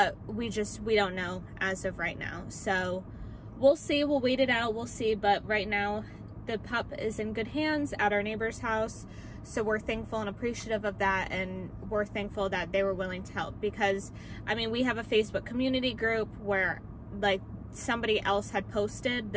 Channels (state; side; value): identical; both; correlation 1.00